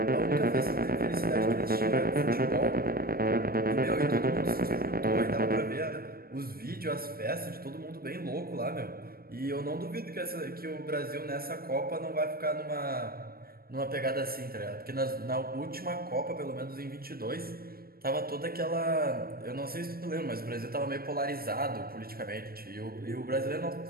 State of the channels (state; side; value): late; left; 0.44 ms